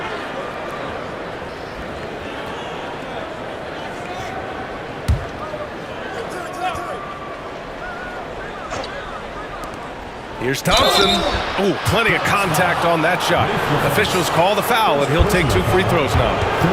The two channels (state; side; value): identical; both; correlation 1.00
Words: Here's Thompson. Ooh, plenty of contact on that shot. Officials call the foul, and he'll take 2 free throws now.